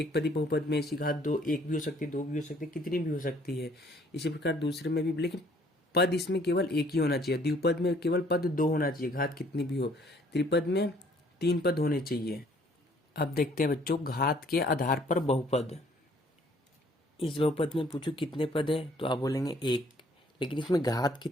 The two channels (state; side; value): normal; both; correlation 0.61